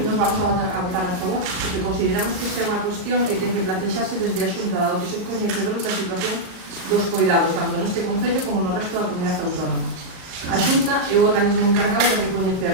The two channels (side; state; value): left; late; 38 ms